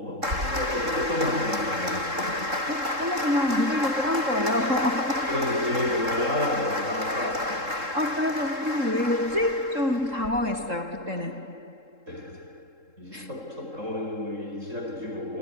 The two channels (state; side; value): late; left; 3.7 ms